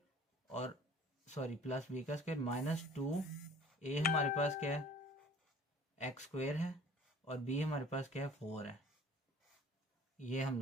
और सॉरी प्लस बी का स्क्वायर माइनस 2, ए हमारे पास क्या है एक्स स्क्वायर है और बी हमारे पास क्या है 4 है। ये हम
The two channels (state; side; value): normal; both; correlation 0.49